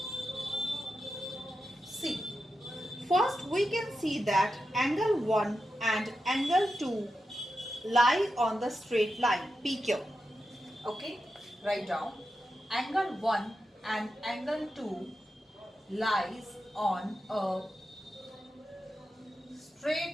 see. First we can see that angle 1 and angle 2 lie on the straight line PQ. Okay? Write down. Angle 1 and angle 2 lies on a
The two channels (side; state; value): both; normal; correlation 0.89